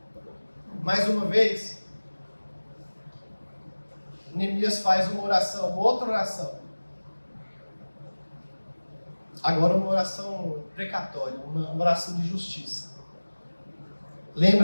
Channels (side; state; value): both; inverted; correlation -1.00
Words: Mais uma vez, Neemias faz uma oração, uma outra oração. Agora uma oração precatória, uma oração de justiça.